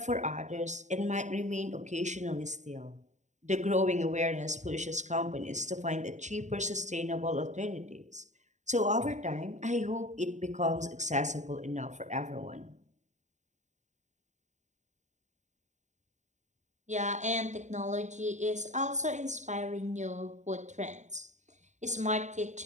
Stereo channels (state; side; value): late; left; 0.34 ms